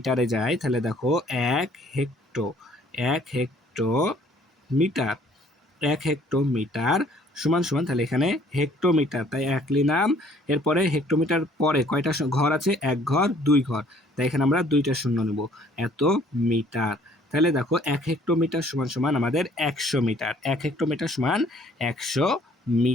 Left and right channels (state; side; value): normal; both; correlation 0.59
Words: যাই, তাহলে দেখো 1 হেক্টোমিটার, 1 হেক্টোমিটার সমান সমান, তাহলে এখানে হেক্টোমিটার তাই 1 নিলাম। এরপরে হেক্টোমিটার পরে কয়টা ঘর আছে, 1 ঘর 2 ঘর, তাই এখানে আমরা 2টা শূন্য নেব, এত মিটার। তাহলে দেখো 1 হেক্টোমিটার সমান সমান আমাদের 100 মিটার, 1 হেক্টোমিটার সমান 100